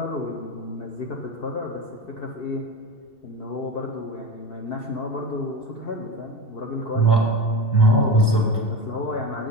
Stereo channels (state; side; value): late; right; 2.7 ms